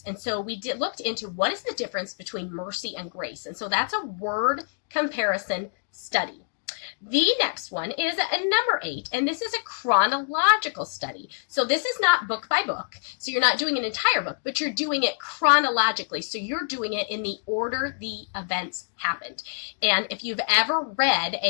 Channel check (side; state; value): right; silent; digital silence